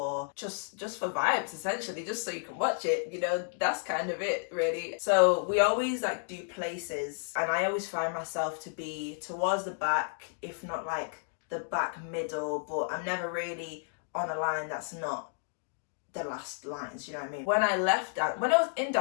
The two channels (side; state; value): right; silent; digital silence